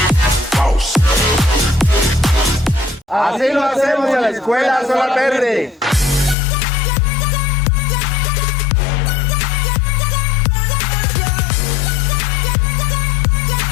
Así lo hacemos en la Escuela Solar Verde.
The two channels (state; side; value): drops out; right; at 6.4 s